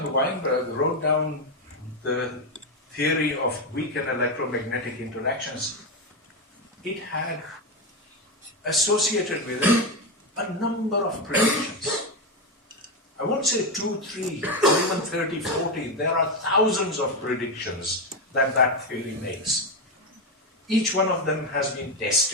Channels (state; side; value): normal; both; correlation 0.10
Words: Weinberg wrote down the theory of weak and electromagnetic interactions, it had associated with it a number of predictions. I won't say 2, 3, or even 30, 40. There are thousands of predictions that that theory makes. Each one of them has been